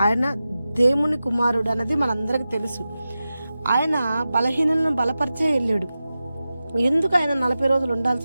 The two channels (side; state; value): both; inverted; correlation -0.93